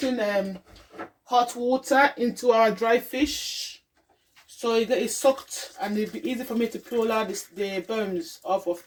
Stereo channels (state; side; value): identical; both; correlation 1.00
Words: hot water into our dry fish, so it gets soaked, and it'll be easy for me to peel out the bones off